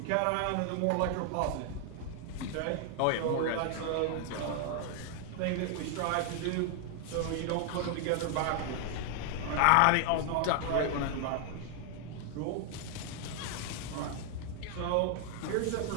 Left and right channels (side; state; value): both; different; correlation 0.00